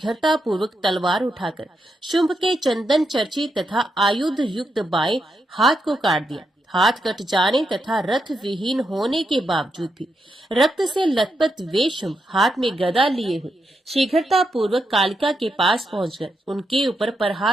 पूर्वक तलवार उठाकर शुंभ के चंदन चर्चित तथा आयुध युक्त बाएं हाथ को काट दिया। हाथ कट जाने तथा रथ विहीन होने के बावजूद भी रक्त से लथपथ वे शुंभ हाथ में गदा लिए हुए शीघ्रता पूर्वक कालिका के पास पहुंचकर उनके ऊपर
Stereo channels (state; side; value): normal; both; correlation 0.83